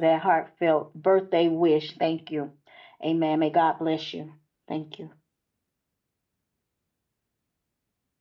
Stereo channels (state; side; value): identical; both; correlation 1.00